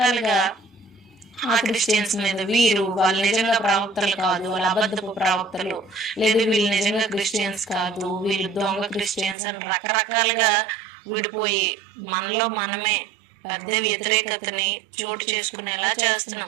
ఆ క్రిస్టియన్స్ మీద వాళ్ళు నిజంగా ప్రవక్తలు కాదు, వాళ్ళు అబద్ధపు ప్రవక్తలు, లేదు వీళ్ళు నిజంగా క్రిస్టియన్స్ కాదు, వీళ్ళు దొంగ క్రిస్టియన్స్ అని రకరకాలుగా విడిపోయి మనలో మనమే పెద్ద వ్యతిరేకతని చోటు చేసుకునేలా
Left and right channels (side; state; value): left; drops out; at 9.3 s